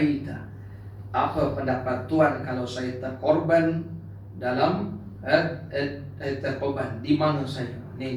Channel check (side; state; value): both; identical; correlation 1.00